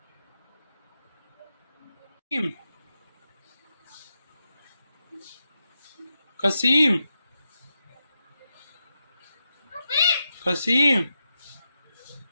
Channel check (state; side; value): inverted; both; correlation -0.87